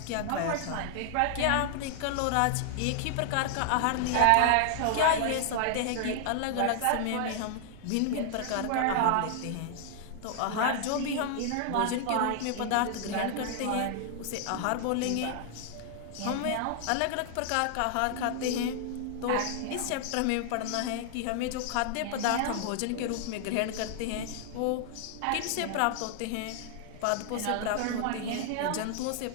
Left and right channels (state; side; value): different; both; correlation 0.00